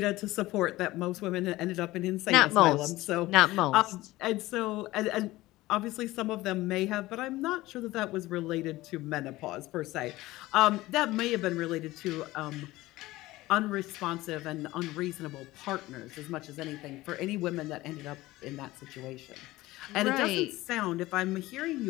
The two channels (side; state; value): right; quieter; 18.2 dB